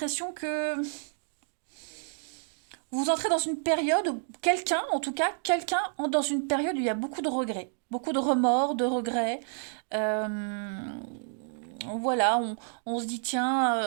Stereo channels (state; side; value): silent; left; digital silence